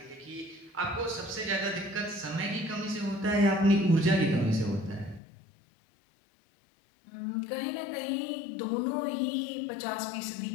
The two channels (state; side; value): drops out; right; at 5.2 s